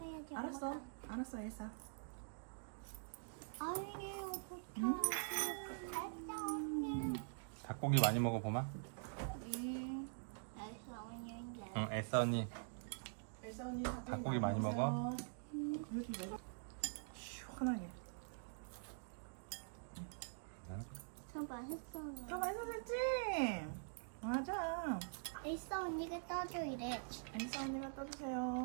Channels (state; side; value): silent; left; digital silence